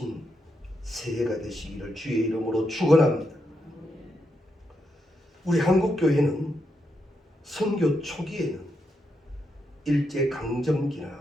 새해가 되시기를 주의 이름으로 축원합니다. 우리 한국교회는 선교 초기에는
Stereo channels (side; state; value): both; normal; correlation 0.82